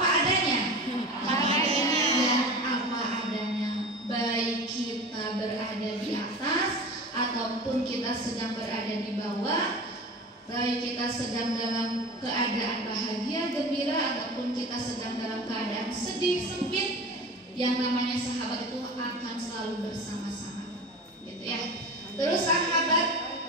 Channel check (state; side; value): normal; both; correlation 0.33